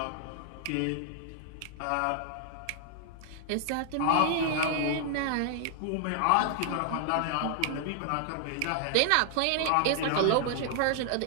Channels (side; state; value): both; different; correlation 0.00